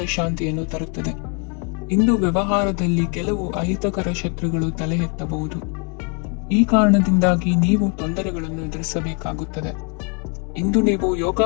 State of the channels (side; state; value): right; quieter; 36.0 dB